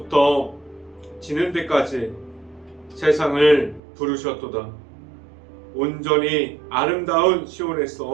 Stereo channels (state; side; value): drops out; left; at 3.8 s